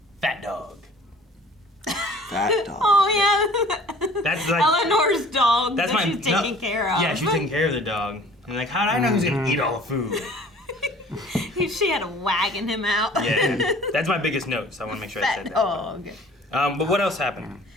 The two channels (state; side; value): normal; both; correlation 0.49